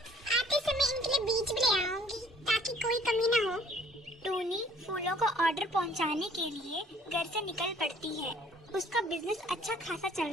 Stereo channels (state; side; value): normal; both; correlation 0.57